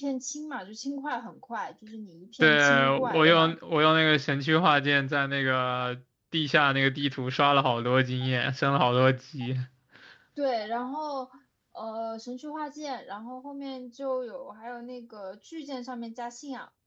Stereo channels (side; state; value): both; identical; correlation 1.00